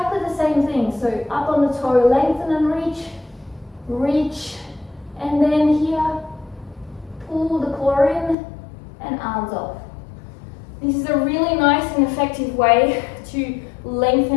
the same thing. So up on the toe, lengthen and reach, reach, and then here, pull the core in and arms off. This is a really nice and effective way to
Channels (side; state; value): right; drops out; at 8.3 s